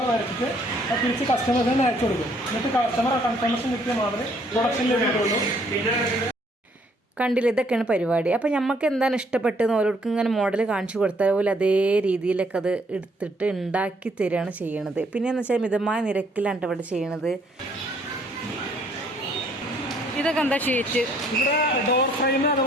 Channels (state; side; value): normal; both; correlation 0.65